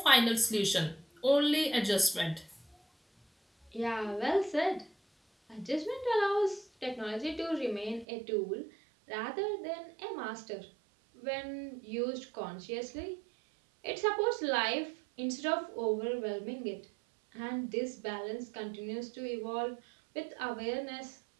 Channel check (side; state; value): left; drops out; at 8.1 s